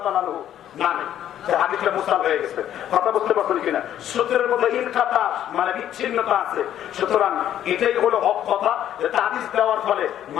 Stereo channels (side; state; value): right; quieter; 11.0 dB